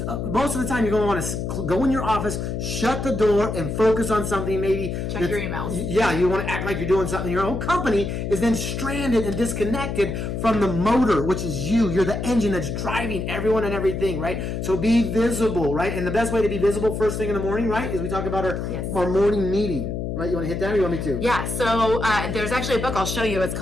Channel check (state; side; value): noise; left; hum, 3 dB below the sound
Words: the time you're going to want to go in your office, shut the door, and focus on something. Maybe check your emails. Yeah, you want to act like you're doing something. Your own company is then stranded and disconnected from the motor, which is you. You're the engine that's driving everyone and everything, right? So be visible, right? And the best way to be visible first thing in the morning, right, is we talk about our morning meeting. Right, you want to hit that, or you want me to? Yeah, so there's actually a book I'll show you. It's